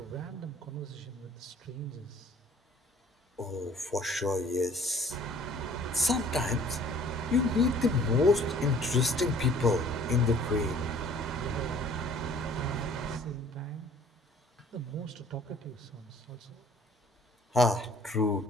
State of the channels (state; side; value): normal; both; correlation 0.54